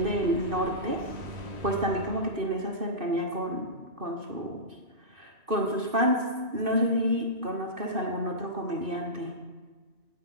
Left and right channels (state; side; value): late; left; 2.6 ms